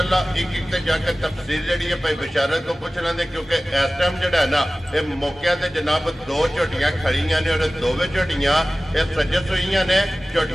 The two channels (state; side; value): normal; both; correlation 0.97